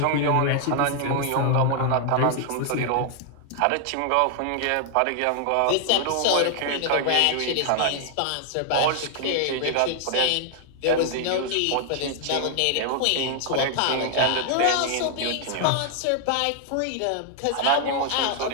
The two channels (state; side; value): different; both; correlation 0.00